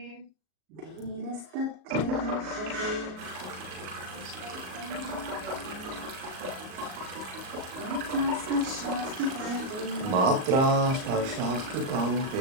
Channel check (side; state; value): left; late; 38 ms